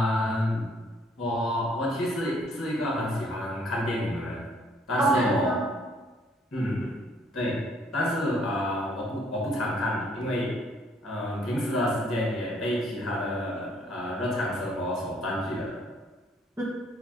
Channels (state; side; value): normal; both; correlation 0.64